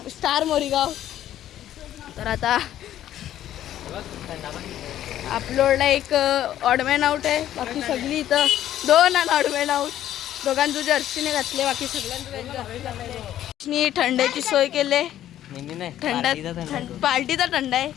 स्टार मोरीगाव. तर आता अपलोडला एक ऑडमॅन आउट आहे, बाकी सगळी इथं 2 ऑडमॅन आउट. दोघांचं जर्सीने घातले, बाकी सगळ्यांनी थंड्याची सोय केली. पार्टीचा थंडा आहे.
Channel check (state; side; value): quieter; right; 12.0 dB